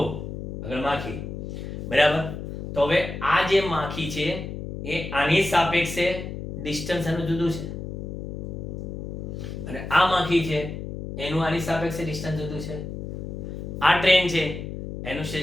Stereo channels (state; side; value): noise; left; hum, 7 dB below the sound